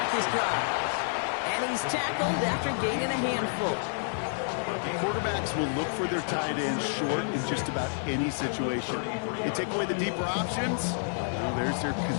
this drive. And he's tackled after gaining a handful. Quarterbacks will look for their tight ends short in just about any situation. They take away the deeper options. Well, there's their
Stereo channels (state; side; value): silent; right; digital silence